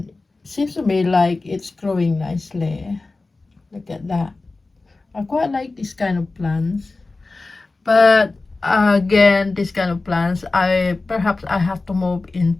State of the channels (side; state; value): right; quieter; 3.5 dB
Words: seems to me like it's growing nicely. Look at that. I quite like this kind of plants, but again, this kind of plants, I have to move